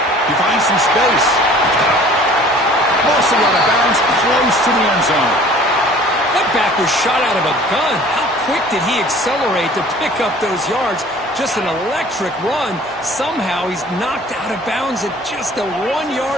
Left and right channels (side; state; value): both; normal; correlation 0.49